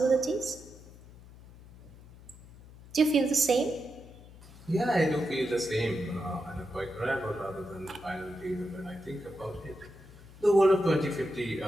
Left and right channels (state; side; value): noise; left; hum, 20 dB below the sound